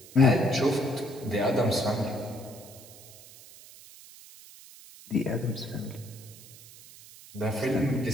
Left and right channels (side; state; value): right; noise; hiss, 20 dB below the sound